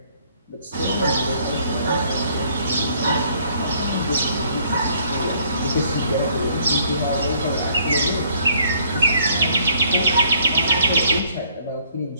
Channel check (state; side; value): inverted; both; correlation -0.63